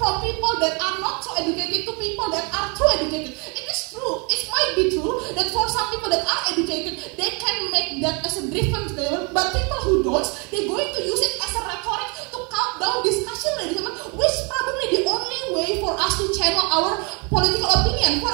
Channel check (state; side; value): quieter; left; 32.4 dB